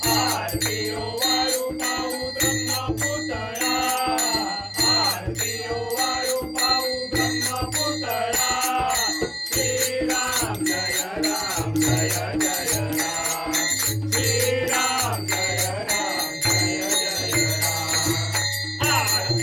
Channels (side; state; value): both; identical; correlation 1.00